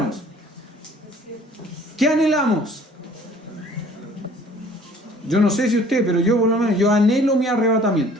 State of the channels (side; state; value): both; normal; correlation 0.53